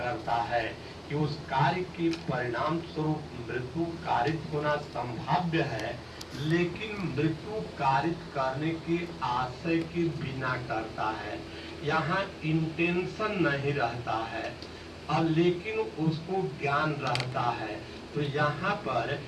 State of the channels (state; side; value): identical; both; correlation 1.00